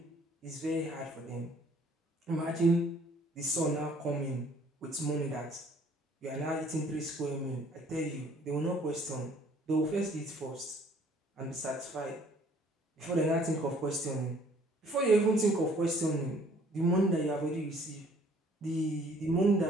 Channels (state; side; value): normal; both; correlation 0.58